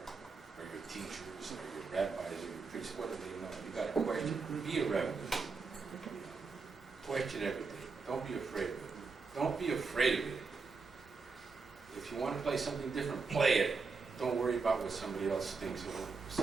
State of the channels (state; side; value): quieter; left; 4.6 dB